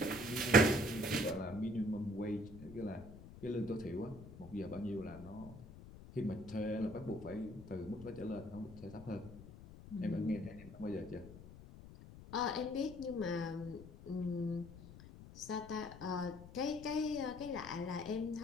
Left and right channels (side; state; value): left; noise; rumble, 15 dB below the sound